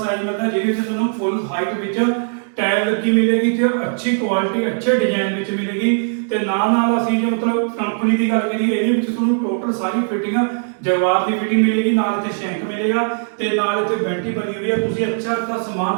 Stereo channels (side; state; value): left; silent; digital silence